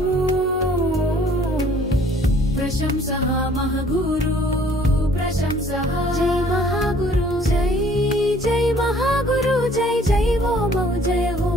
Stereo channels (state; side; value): normal; both; correlation 0.57